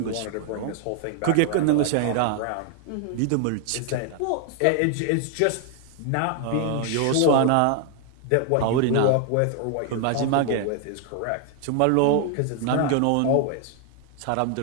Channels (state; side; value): different; both; correlation 0.00